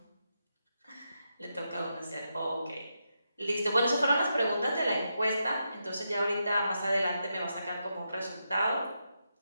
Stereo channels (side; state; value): both; inverted; correlation -0.85